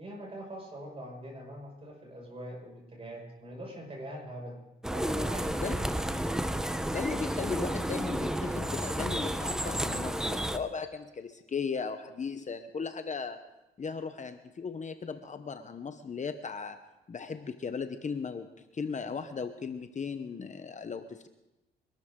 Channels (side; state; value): both; normal; correlation 0.71